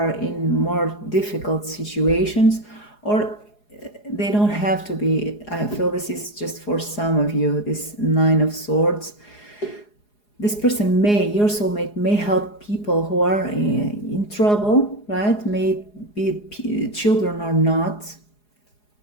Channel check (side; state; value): right; late; 4.8 ms